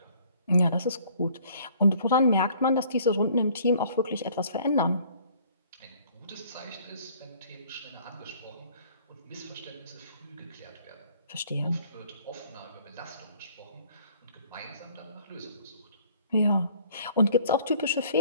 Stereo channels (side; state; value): both; inverted; correlation -0.57